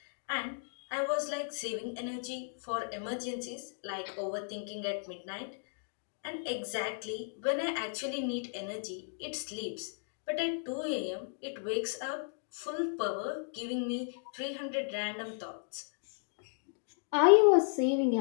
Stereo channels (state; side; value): silent; right; digital silence